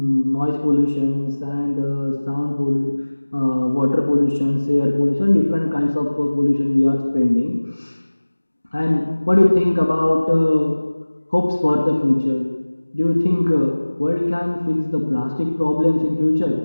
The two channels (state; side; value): inverted; both; correlation -1.00